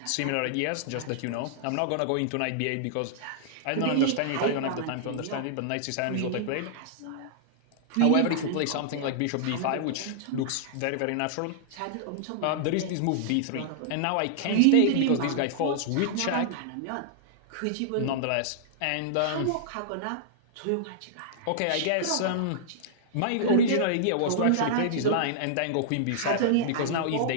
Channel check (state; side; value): different; both; correlation -0.01